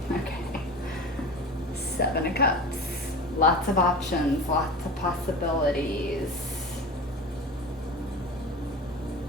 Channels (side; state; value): both; normal; correlation 0.33